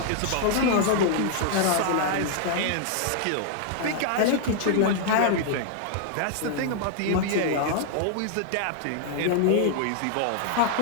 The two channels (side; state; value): both; different; correlation -0.01